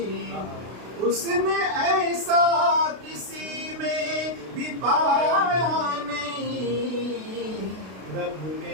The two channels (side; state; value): left; late; 32 ms